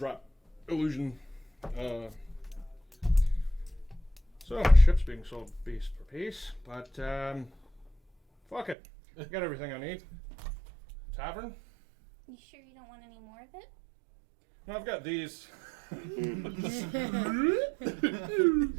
illusion. So my ship's being sold piece for piece, but fuck it, I got everything I need. Tavern? You sure you don't want any more of it? No, I've got these.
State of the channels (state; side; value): drops out; left; at 8.8 s